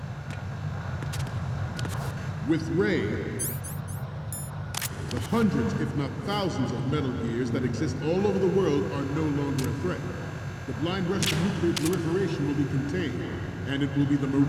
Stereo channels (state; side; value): identical; both; correlation 1.00